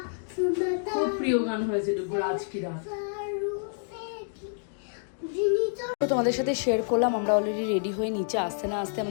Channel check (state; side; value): silent; right; digital silence